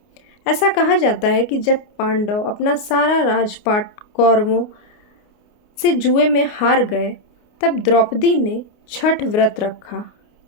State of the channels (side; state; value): right; late; 29 ms